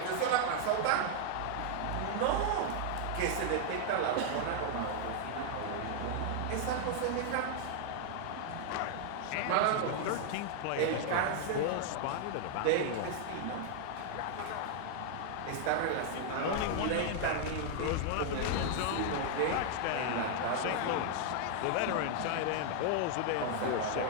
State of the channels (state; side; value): different; both; correlation 0.00